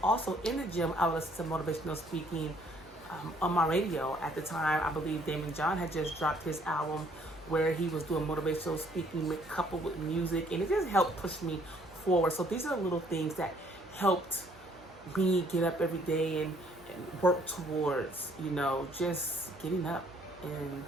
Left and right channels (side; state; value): both; normal; correlation 0.63